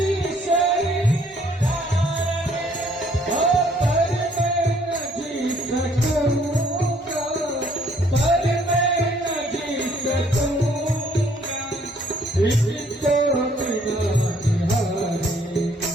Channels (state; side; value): normal; both; correlation 0.63